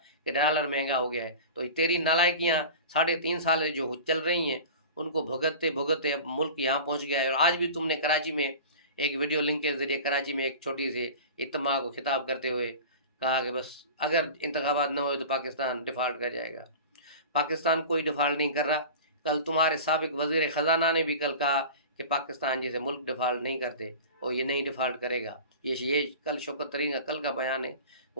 کہ ڈالر مہنگا ہو گیا ہے۔ تو تیری نالائکیاں 3.5 سال میں جو چل رہی ہیں ان کو بھگتتے بھگتتے اب ملک یہاں پہنچ گیا ہے۔ اور آج بھی تم نے کراچی میں ایک ویڈیو لنک کے ذریعے کراچی میں ایک چھوٹی سی اجتماع کو خطاب کرتے ہوئے کہا کہ بس اگر انتخابات نہ ہوئے تو پاکستان ڈیفالٹ کر جائے گا۔ پاکستان کوئی ڈیفالٹ نہیں کر رہا۔ کل تمہارے سابق وزیر خزانہ نے بھی کل کہا کہ پاکستان جیسے ملک ڈیفالٹ نہیں کرتے اور یہ نہیں ڈیفالٹ کرے گا۔ یہ کل شوکت ترین کا کل کا بیان ہے،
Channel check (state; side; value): inverted; both; correlation -0.35